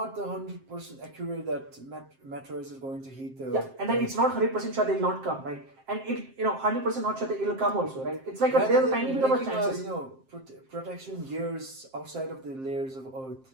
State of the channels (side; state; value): left; late; 7.6 ms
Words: 100% accurate that meteorites are going to hit the. Yeah, and then it's not 100% sure they'll not come, right? And 100% not sure that it'll come also, right? It's like there's a tiny bit of a chances. Protection gears outside of the layers of Earth.